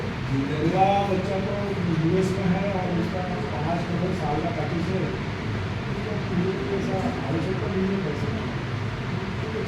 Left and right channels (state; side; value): identical; both; correlation 1.00